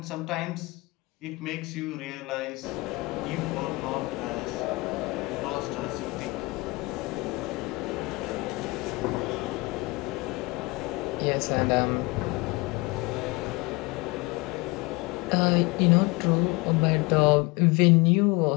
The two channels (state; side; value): quieter; right; 24.6 dB